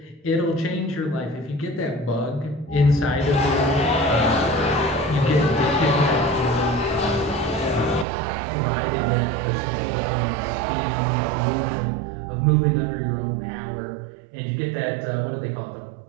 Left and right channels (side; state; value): left; drops out; at 8.1 s